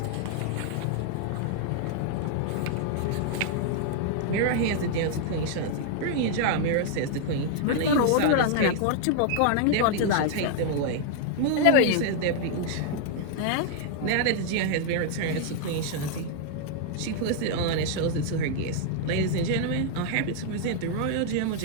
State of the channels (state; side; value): different; both; correlation -0.01